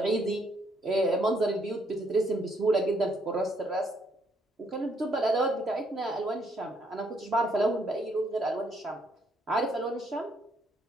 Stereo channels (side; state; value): both; normal; correlation 0.71